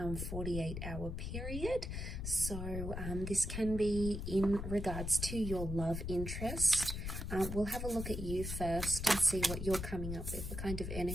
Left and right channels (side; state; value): left; noise; rumble, 5 dB below the sound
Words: period. So this can be in regards to your love interest. We'll have a look at you first and see what you're coming up with, the kind of